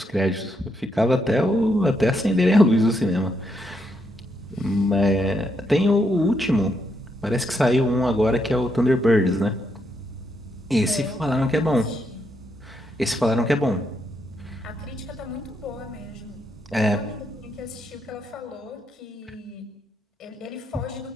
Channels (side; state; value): both; normal; correlation 0.78